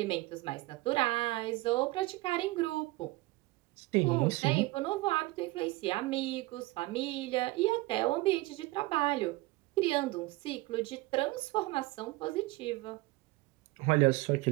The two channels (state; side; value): quieter; left; 20.8 dB